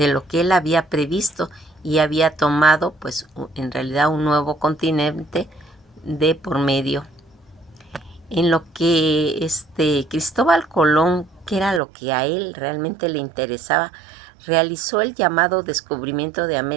lo que él había previsto y había tomado pues en realidad un nuevo continente de por medio. En lo que Cristóbal Colón, que era lo que a él realmente le interesaba, realizó el llamado descubrimiento de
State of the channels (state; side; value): drops out; left; at 11.8 s